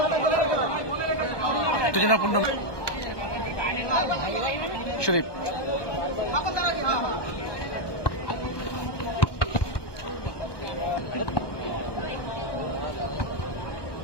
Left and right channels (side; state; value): right; late; 1.2 ms